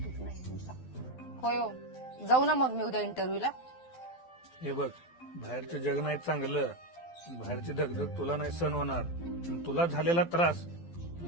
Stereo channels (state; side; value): late; right; 12 ms